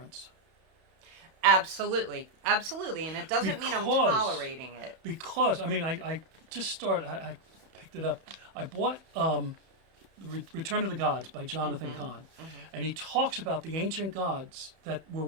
Absolutely. Absolutely. And it doesn't mean I'm Because- tolerating it. Because, I mean, I just started, I picked it up. I bought Return of the Gods by Jonathan Cahn. And he talks about the ancient gods that were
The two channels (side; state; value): left; late; 31 ms